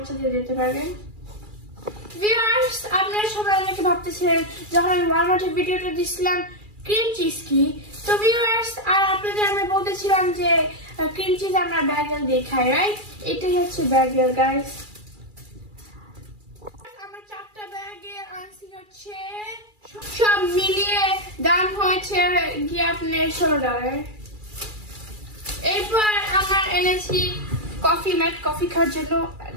দিতে পারবেন। ভিউয়ার্স, আপনারা সবাই অনেকে ভাবতেছিলেন যখন আমি ওয়ালমার্টের ভিডিওটা দিছিলাম ক্রিম চিজ কি। তো ভিউয়ার্স, আর আপনাদের আমি বলতেছিলাম যে ক্রিম চিজ আমরা ব্যাগেল দিয়ে খাই, রাইট? এটাই হচ্ছে ব্যাগেল গাইস। আমার 4টা ব্যাগে আনছি হচ্ছে, সব মিলিয়ে দাম হয়েছে গিয়ে আপনার $16। এরপর আমার এনেছি কফি ম্যাট, কফি খাওয়ার জন্য।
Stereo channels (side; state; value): left; late; 2.4 ms